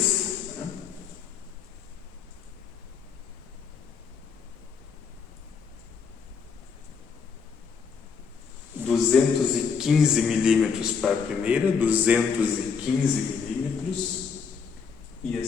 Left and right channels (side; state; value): right; quieter; 6.0 dB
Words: 215 milímetros para a primeira, 215 milímetros, e a